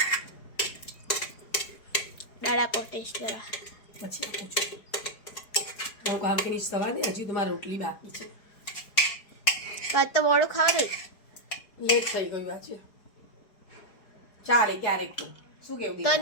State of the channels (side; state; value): right; late; 4.8 ms